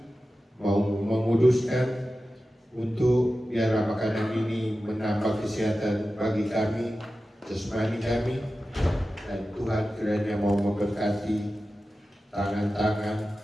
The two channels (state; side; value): normal; both; correlation 0.94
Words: mau menguduskan, untuk biarlah makanan ini menambah kesehatan bagi kami, jasmani kami, dan Tuhan kiranya mau memberkati tangan-tangan